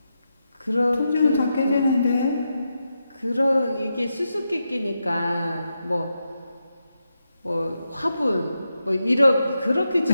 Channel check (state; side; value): inverted; both; correlation -0.87